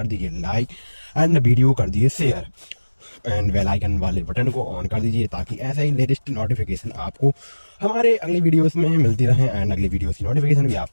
दीजिए लाइक एंड वीडियो कर दीजिए शेयर एंड बेल आइकन वाले बटन को ऑन कर दीजिए ताकि ऐसा ही लेटेस्ट नोटिफिकेशन आपको हमारे अगले वीडियोस में मिलती रहे एंड अगले वीडियोस की नोटिफिकेशन भी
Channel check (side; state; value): both; inverted; correlation -1.00